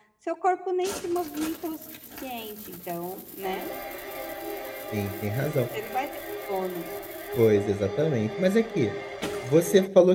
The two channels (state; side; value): identical; both; correlation 1.00